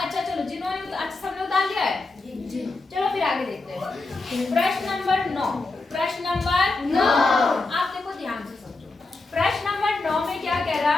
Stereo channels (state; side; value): quieter; right; 3.4 dB